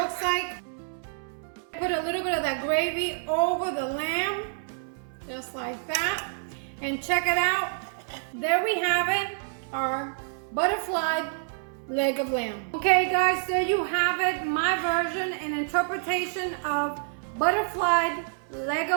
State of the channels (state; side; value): silent; left; 60 dB below the other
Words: like. Put a little bit of that gravy over the lamb, just like that. And check it out. There we have it, our butterflied leg of lamb. Okay guys, there you have it, my version and interpretation of butterflied leg